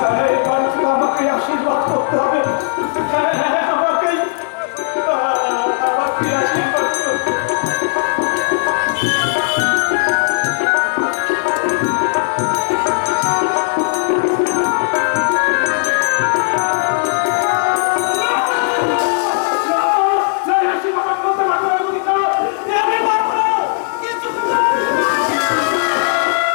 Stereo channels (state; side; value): silent; right; 69 dB below the other